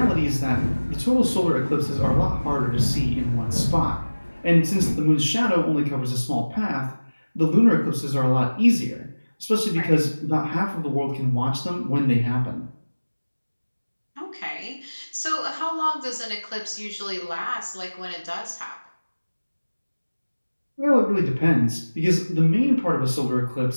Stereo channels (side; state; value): both; inverted; correlation -1.00